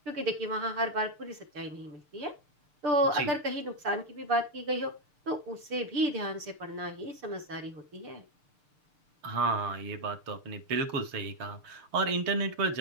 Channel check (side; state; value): left; late; 6.7 ms